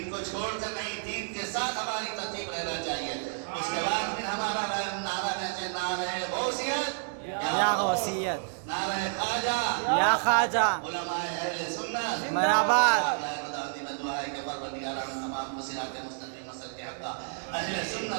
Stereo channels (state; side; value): silent; left; 58 dB below the other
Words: کو چھوڑ کر نہیں، دین کے ساتھ ہماری ترتیب رہنا چاہیے۔ اس کے بعد پھر ہمارا نعرہ رہے، نعرہ غوثیت، یا غوثیت، نعرہ خواجہ، یا خواجہ، علماء اہل سنت، مرحبا، دعا ہے کہ پروردگار ہم تمام کو صراط مستقیم مسلک حق کا اہل